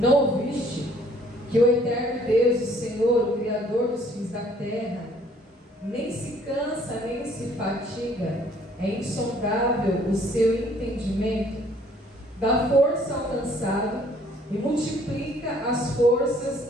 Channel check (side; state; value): both; normal; correlation 0.60